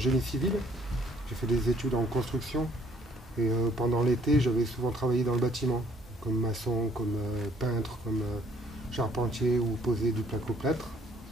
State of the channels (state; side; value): normal; both; correlation 0.62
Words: civil. J'ai fait des études en construction et pendant l'été, j'avais souvent travaillé dans le bâtiment, comme maçon, comme peintre, comme charpentier ou poser du placo-plâtre.